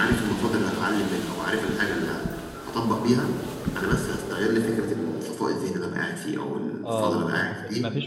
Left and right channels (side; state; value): both; identical; correlation 1.00